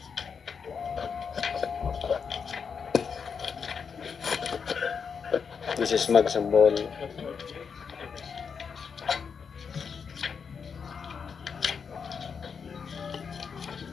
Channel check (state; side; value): quieter; right; 6.2 dB